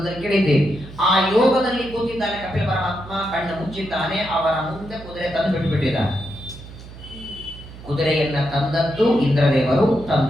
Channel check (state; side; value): noise; right; hum, 16 dB below the sound